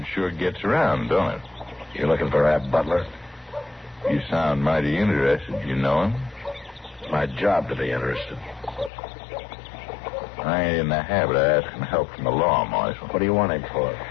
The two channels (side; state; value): right; drops out; at 8.9 s